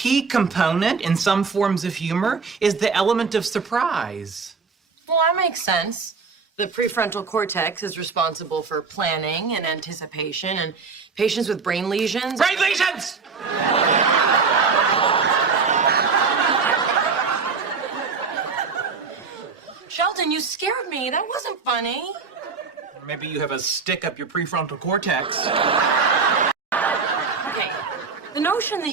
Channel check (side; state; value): left; quieter; 5.1 dB